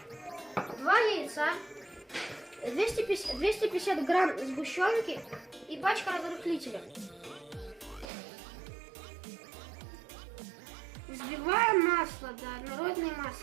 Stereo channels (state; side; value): drops out; left; at 8.1 s